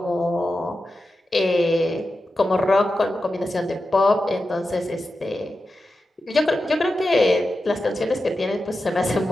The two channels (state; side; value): normal; both; correlation 0.91